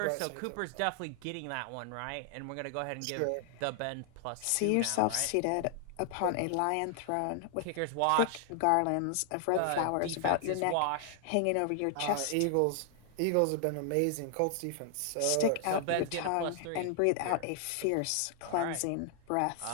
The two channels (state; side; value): different; both; correlation 0.00